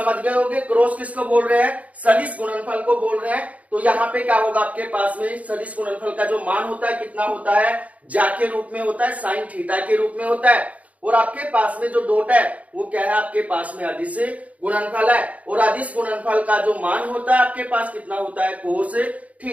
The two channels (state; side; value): late; left; 0.069 ms